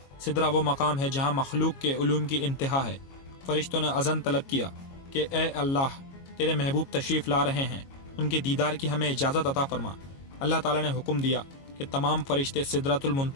سدرہ وہ مقام ہے جہاں مخلوق کے علوم کی انتہا ہے۔ فرشتوں نے اذن طلب کیا کہ اے اللہ، تیرے محبوب تشریف لا رہے ہیں، ان کے دیدار کی ہمیں اجازت عطا فرما۔ اللہ تعالیٰ نے حکم دیا کہ تمام فرشتے سدرۃ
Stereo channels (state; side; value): late; right; 22 ms